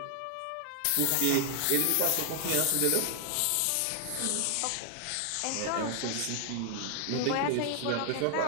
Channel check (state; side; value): different; both; correlation 0.00